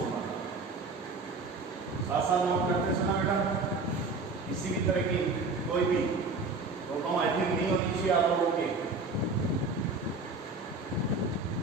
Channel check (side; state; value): left; quieter; 3.7 dB